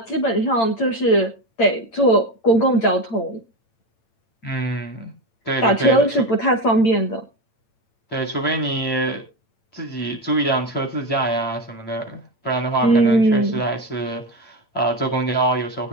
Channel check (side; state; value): right; late; 8.8 ms